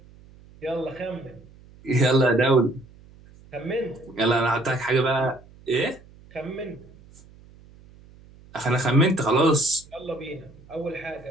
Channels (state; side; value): noise; right; hum, 24 dB below the sound